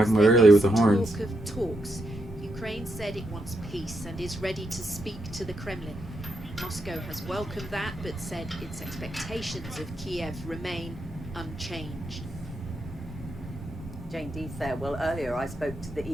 about earlier with the horns. Talk of talks. Ukraine said it wants peace and is ready to speak to the Kremlin. Moscow has welcomed that, but said its expectations of Kyiv remain unchanged. Jane Deeth there. Well, earlier I spoke to the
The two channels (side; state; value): both; normal; correlation 0.82